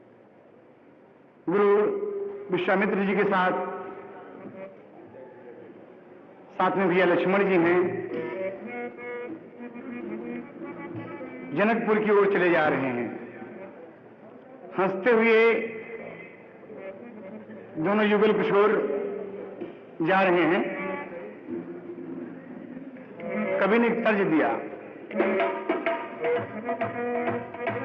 गुरु विश्वामित्र जी के साथ में भैया लक्ष्मण जी हैं, जनकपुर की ओर चले जा रहे हैं। हंसते हुए दोनों युगल किशोर जा रहे हैं। कवि ने एक तर्ज दिया,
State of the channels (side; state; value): both; identical; correlation 1.00